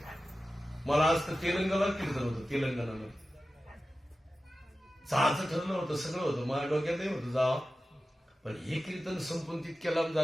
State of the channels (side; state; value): both; normal; correlation 0.94